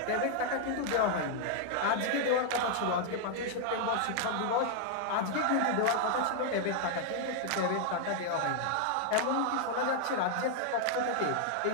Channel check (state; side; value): different; both; correlation -0.01